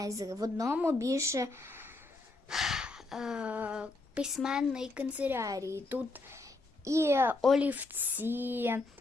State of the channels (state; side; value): quieter; right; 3.2 dB